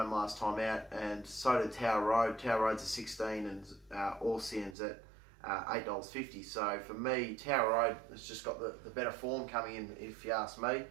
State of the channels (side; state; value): left; drops out; at 4.8 s